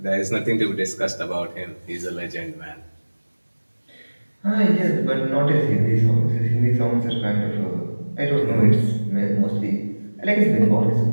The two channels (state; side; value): inverted; both; correlation -1.00